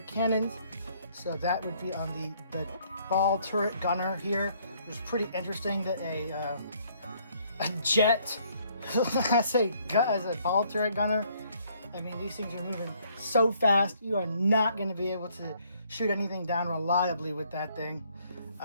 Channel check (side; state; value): both; inverted; correlation -0.66